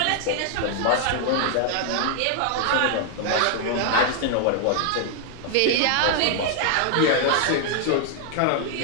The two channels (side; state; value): both; different; correlation 0.00